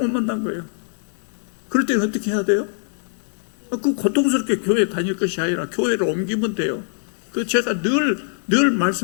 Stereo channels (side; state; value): right; silent; digital silence